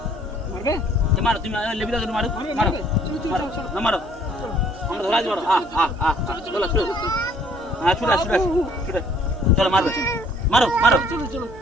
মারবে? মারো তুমি, লেবি দাও, মারো মারো না, মারো আমরা ধরা যাবো। চলো চলো, হ্যাঁ ছুটে ছুটে চলো, মারবে মারো মারো। চলো চলো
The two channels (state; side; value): noise; right; hum, 19 dB below the sound